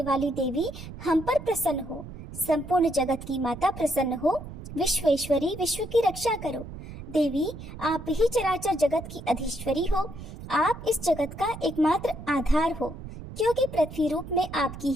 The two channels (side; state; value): right; noise; rumble, 12 dB below the sound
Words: वाली देवी हम पर प्रसन्न हो। संपूर्ण जगत की माता प्रसन्न हो। विश्वेश्वरी, विश्व की रक्षा करो। देवी, आप ही चराचर जगत की अधीश्वरी हो। आप इस जगत का एकमात्र आधार हो, क्योंकि पृथ्वी रूप में आपकी